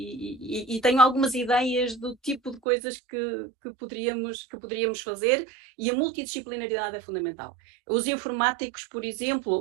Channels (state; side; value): drops out; left; at 2.6 s